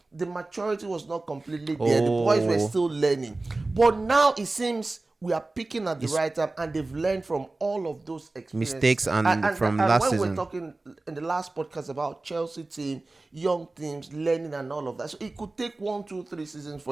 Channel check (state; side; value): quieter; left; 3.1 dB